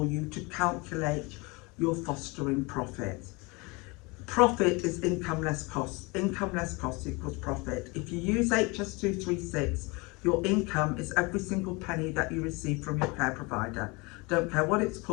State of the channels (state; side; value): quieter; right; 26.7 dB